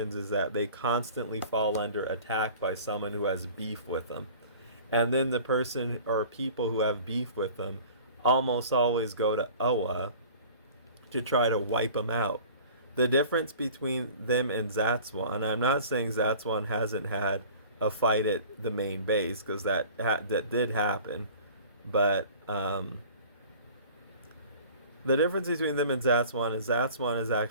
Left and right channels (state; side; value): inverted; both; correlation -0.45